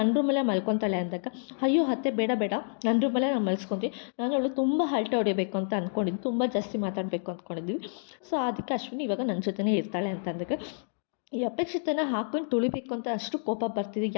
ರೂಮಲ್ಲೇ ಮಲ್ಕೊತಾಳೆ ಅಂದಾಗ, ಅಯ್ಯೋ ಅತ್ತೆ ಬೇಡ ನನ್ನ ರೂಮಲ್ಲೇ ನಾನು ಮಲ್ಸ್ಕೊತೀವಿ, ನಾನು ಅವಳು ತುಂಬ ಹರಟೆ ಹೊಡಿಬೇಕು ಅಂತ ಅಂದ್ಕೊಂಡಿದ್ದು, ತುಂಬ ಜಾಸ್ತಿ ಮಾತಾಡಬೇಕು ಅಂದ್ಕೊಂಡಿದ್ವಿ, ಸೊ ಅದಕ್ಕೆ ಅಶ್ವಿನಿ ಇವಾಗ ನನ್ನ ಜೊತೆನೇ ಇರ್ತಾಳೆ ಅಂತ ಅಂದಾಗ, ಈ ಅಪೇಕ್ಷಿತನ ಹಾಕೊಂಡು ತುಳಿಬೇಕು ಅಂತ ಅಷ್ಟು ಕೋಪ ಬರ್ತಿದೆ,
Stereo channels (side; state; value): right; silent; digital silence